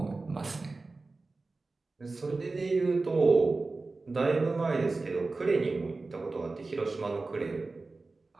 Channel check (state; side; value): quieter; left; 3.6 dB